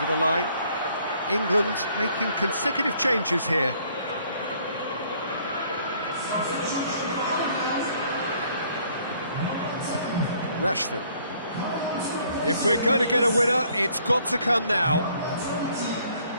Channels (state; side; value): inverted; both; correlation -0.62